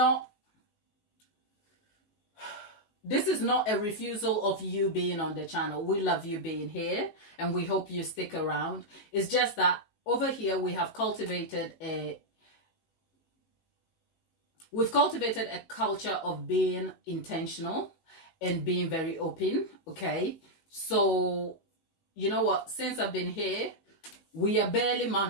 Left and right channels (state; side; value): late; right; 18 ms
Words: a refusal of you being on the channel. We love you being here and we hope you stick around. It's just that over here we have cultivated a culture of being intentional and being very open. Okay, so you know what, since I've been here, we are barely